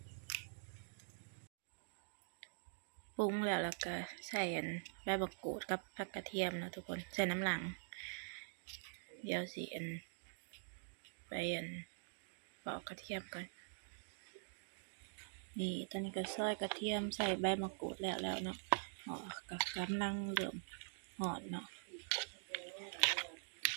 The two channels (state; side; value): silent; left; digital silence